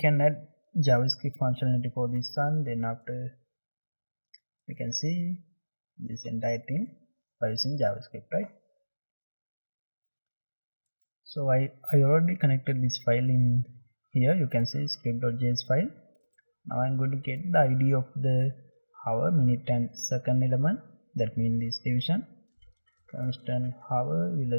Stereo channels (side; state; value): both; inverted; correlation -1.00